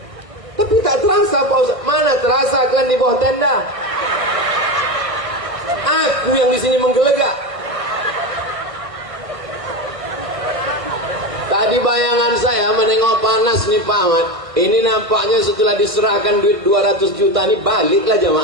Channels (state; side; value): late; left; 1.5 ms